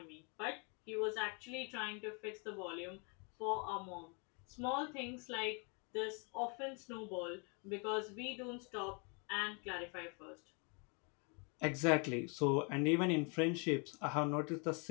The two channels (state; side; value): quieter; right; 35.1 dB